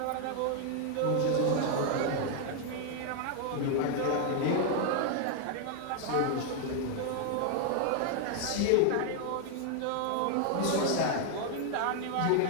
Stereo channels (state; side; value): different; both; correlation 0.00